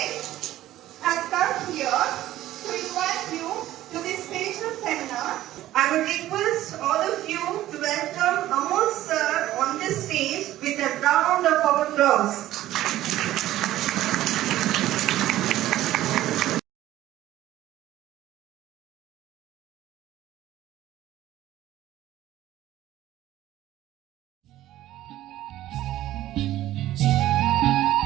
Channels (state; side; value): quieter; left; 14.3 dB